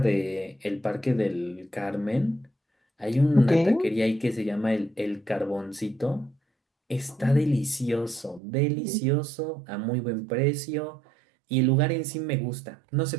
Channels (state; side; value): drops out; left; at 8.4 s